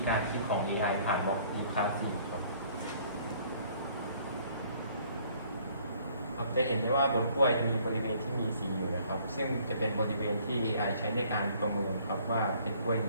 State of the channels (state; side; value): inverted; both; correlation -0.59